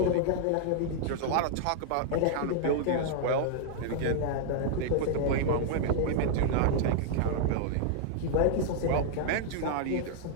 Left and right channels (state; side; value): different; both; correlation -0.01